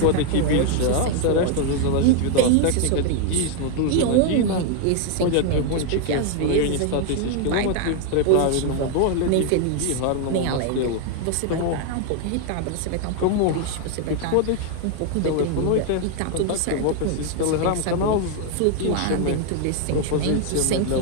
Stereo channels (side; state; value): both; different; correlation 0.00